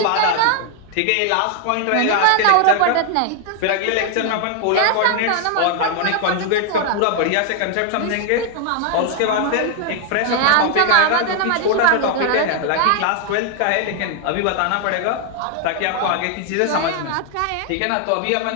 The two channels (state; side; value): different; both; correlation 0.00